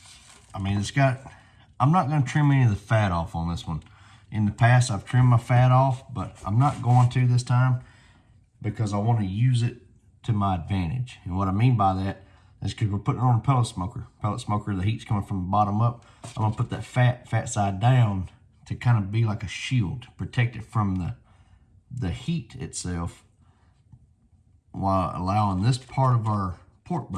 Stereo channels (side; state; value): both; identical; correlation 1.00